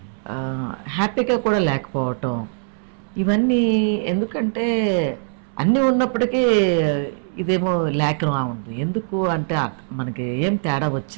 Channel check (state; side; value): silent; left; 64 dB below the other